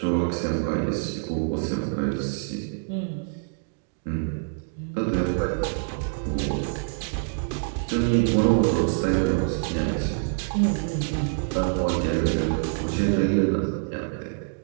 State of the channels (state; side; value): silent; left; digital silence